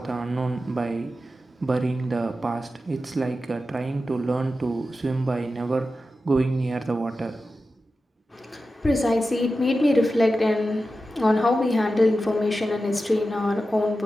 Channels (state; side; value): normal; both; correlation 0.92